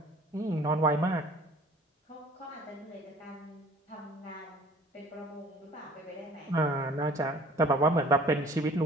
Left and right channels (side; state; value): both; normal; correlation 0.50